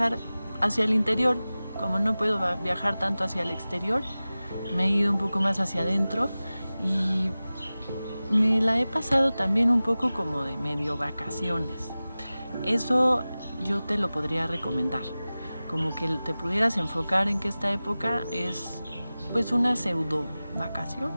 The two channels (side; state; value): both; inverted; correlation -0.97